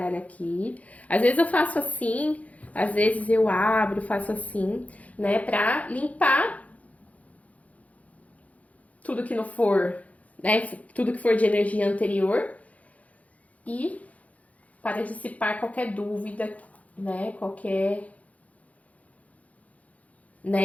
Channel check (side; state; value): right; late; 0.069 ms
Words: aqui. Às vezes eu faço assim, às vezes eu abro, faço assim, né? Pra limpar tudo que não for, né? Tudo que for de energia anterior e para dissipar qualquer dúvida, né? Qualquer